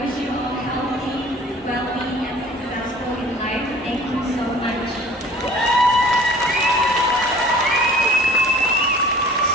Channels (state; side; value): normal; both; correlation 0.48